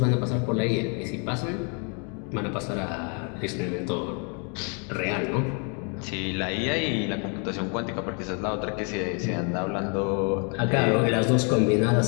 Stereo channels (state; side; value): quieter; right; 37.3 dB